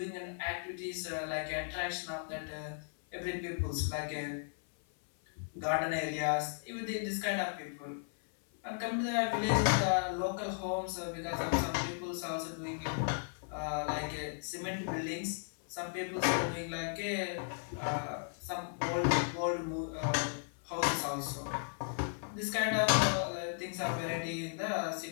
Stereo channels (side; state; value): right; silent; 54 dB below the other